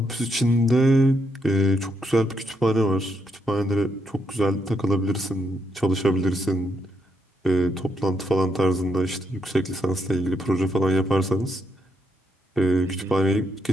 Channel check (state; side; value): normal; both; correlation 0.77